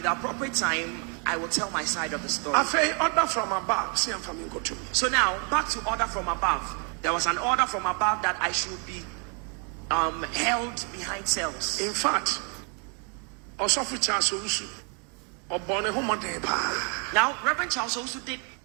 the appropriate time, I will tell my side of the story. Afei order from above, see am family go to me. So now, back to order from above. There was an order from above that I should be held behind cells. In fact, Osofu Charles Owusu obone ho moden pa. Now, Reverend Charles also did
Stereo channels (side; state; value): left; quieter; 38.0 dB